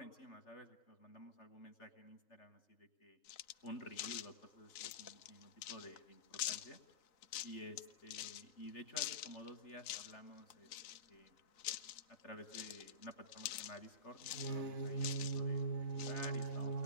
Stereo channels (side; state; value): right; late; 3.8 ms